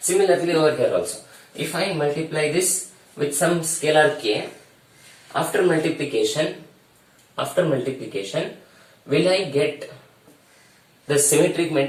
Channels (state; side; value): identical; both; correlation 1.00